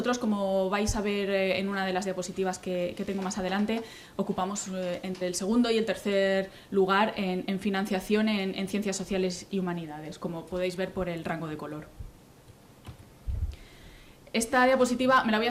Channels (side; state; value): both; identical; correlation 1.00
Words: como vais a ver en una de las diapositivas que tengo más adelante, ocupamos entre el segundo y el tercer lugar en financiación en ciencias sociales y humanidades, como podéis ver por el rango de color. Esta diapositiva me la voy